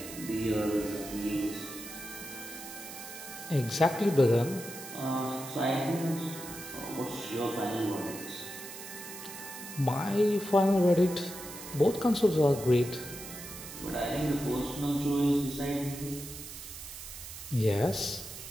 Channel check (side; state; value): right; noise; hiss, 12 dB below the sound